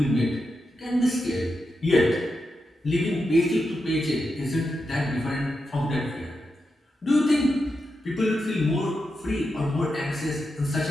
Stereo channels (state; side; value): normal; both; correlation 0.87